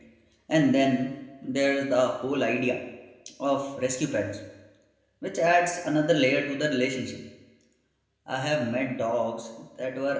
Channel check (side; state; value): both; identical; correlation 1.00